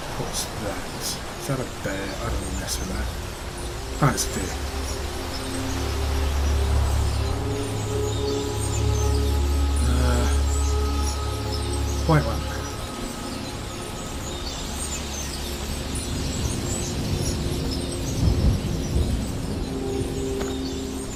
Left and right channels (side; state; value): both; identical; correlation 1.00